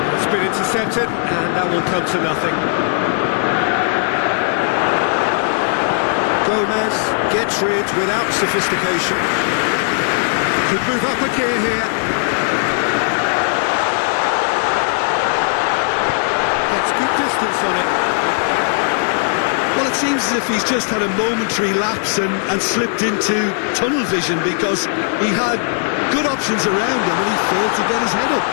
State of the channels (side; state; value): right; silent; digital silence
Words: that's been intercepted, and that will come to nothing. Gomez gets rid without sophistication. Could move up a gear here. Gets good distance on it. Well, it seems as if he's just had a momentary lapse and slipped into tunnel vision, because he had good options around him and he failed to get his head up.